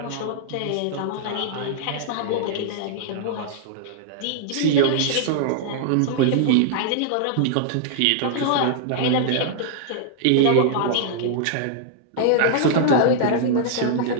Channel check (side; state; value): both; different; correlation -0.01